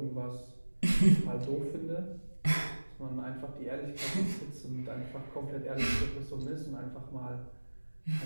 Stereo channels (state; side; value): inverted; both; correlation -1.00